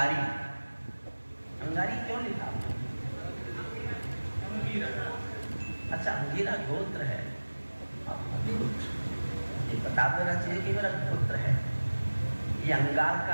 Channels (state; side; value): inverted; both; correlation -1.00